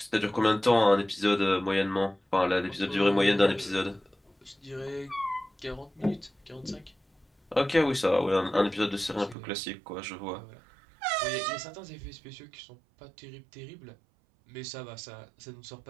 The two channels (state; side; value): drops out; left; at 9.3 s